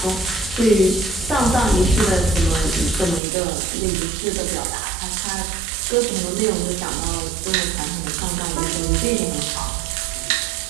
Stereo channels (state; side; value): drops out; left; at 3.2 s